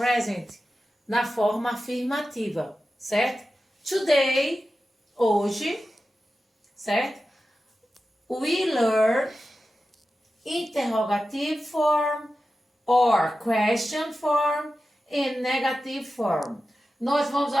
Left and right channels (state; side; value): normal; both; correlation 0.93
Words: na forma afirmativa, certo? Today, hoje, certo? We learn interrogative form or question form and negative form. Nós vamos